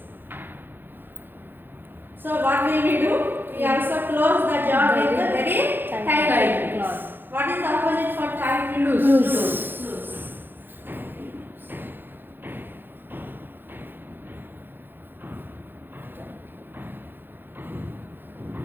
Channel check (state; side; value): late; left; 0.097 ms